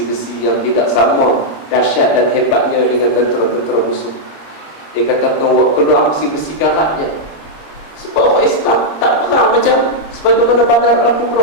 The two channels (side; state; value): right; late; 26 ms